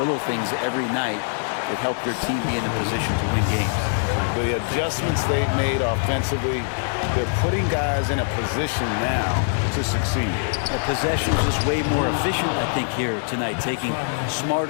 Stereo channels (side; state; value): right; silent; digital silence